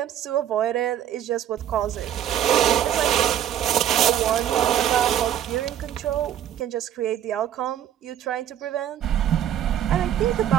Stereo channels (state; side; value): quieter; left; 10.6 dB